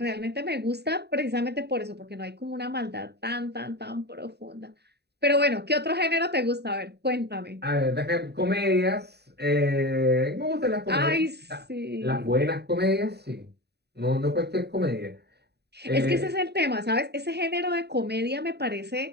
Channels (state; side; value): late; left; 0.48 ms